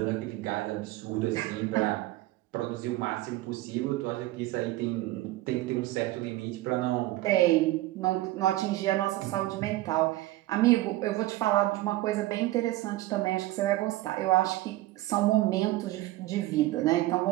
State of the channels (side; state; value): left; quieter; 17.0 dB